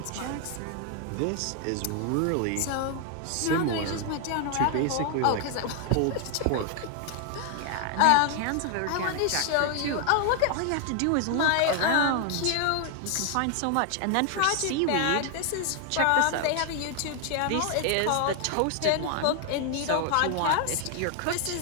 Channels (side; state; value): both; different; correlation 0.00